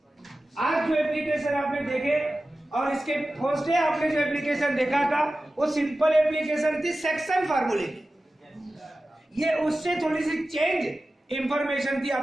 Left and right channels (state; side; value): normal; both; correlation 0.95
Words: आज जो एप्लीकेशन आपने देखे और इसके फर्स्ट डे आपने जो एप्लीकेशन देखा था वो सिंपल एप्लीकेशन थी सेक्शन फार्मूले की। ये उससे थोड़ी सी चेंज इंफॉर्मेशन थी